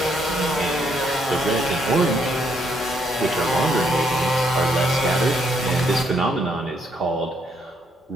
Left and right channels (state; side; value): normal; both; correlation 0.73